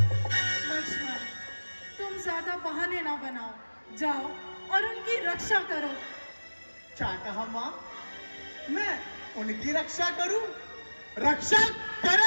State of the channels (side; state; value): both; inverted; correlation -1.00